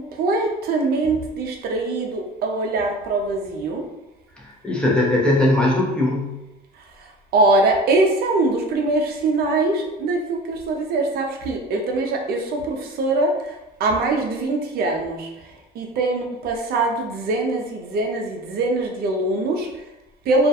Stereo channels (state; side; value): normal; both; correlation 0.38